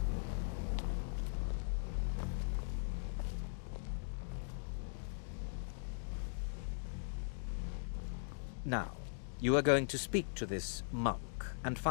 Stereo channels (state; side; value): silent; right; digital silence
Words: Now, you are going to speak to this monk and